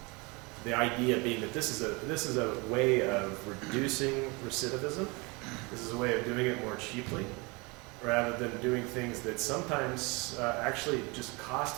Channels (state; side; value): quieter; left; 27.4 dB